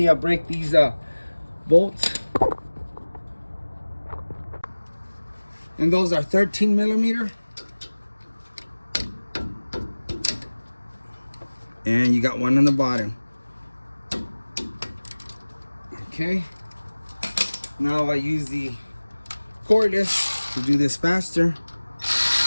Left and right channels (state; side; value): inverted; both; correlation -1.00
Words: break these bolts. And those are 13 millimeter. And you got one on the bottom. Okay. Now I use the cordless to do this faster.